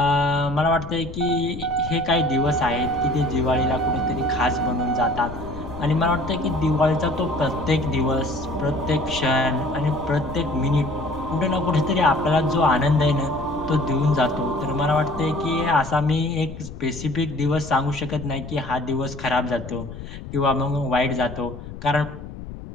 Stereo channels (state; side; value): noise; left; rumble, 12 dB below the sound